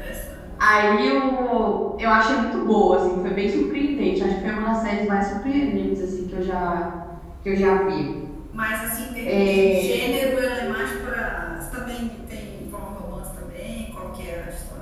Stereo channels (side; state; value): both; identical; correlation 1.00